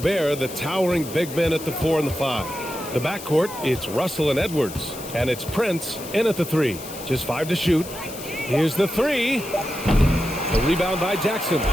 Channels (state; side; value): noise; left; hiss, 13 dB below the sound